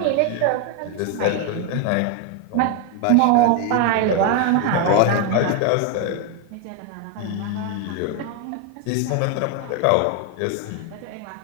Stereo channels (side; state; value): both; different; correlation 0.01